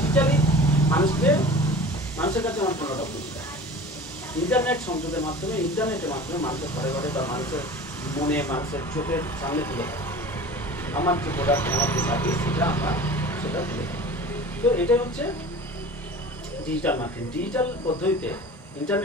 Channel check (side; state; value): both; normal; correlation 0.39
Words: মানুষের কাছে আমার পণ্যটা পৌঁছে দেয়। ইন্টারনেট সংযোগের মাধ্যমে, ইন্টারনেটের মাধ্যমে মানুষের ঘরে ঘরে বা মানুষের মনে, মানুষের চোখের সামনে তুলে দেয় আমার যে প্রোডাক্ট, আমার যে সার্ভিস, সেটা তুলে দেয়। তো এটাই হচ্ছে ডিজিটাল মার্কেটিং। ডিজিটাল পদ্ধতিতে